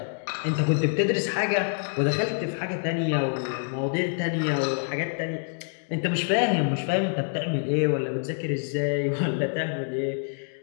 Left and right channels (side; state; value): right; silent; 61 dB below the other